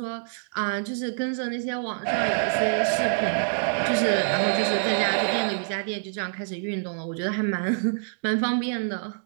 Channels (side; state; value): left; silent; digital silence